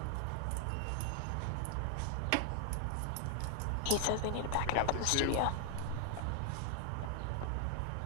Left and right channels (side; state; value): both; different; correlation 0.00